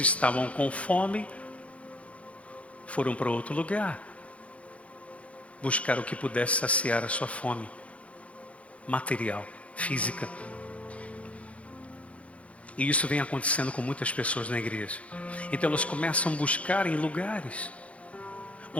com fome, foram para outro lugar, buscar o que pudesse saciar a sua fome material, física. E isso vem acontecendo com muitas pessoas na igreja. Então elas começam a buscar em lugares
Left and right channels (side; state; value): right; late; 0.064 ms